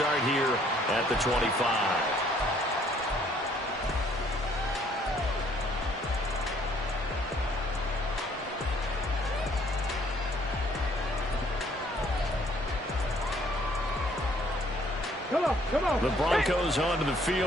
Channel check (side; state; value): both; normal; correlation 0.62